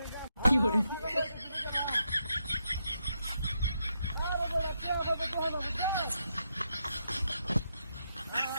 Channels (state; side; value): inverted; both; correlation -0.82